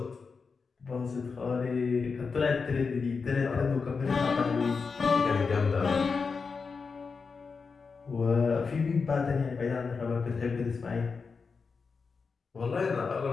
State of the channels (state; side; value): quieter; right; 5.0 dB